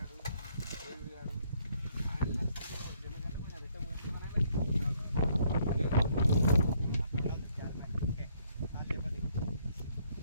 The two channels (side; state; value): both; inverted; correlation -0.68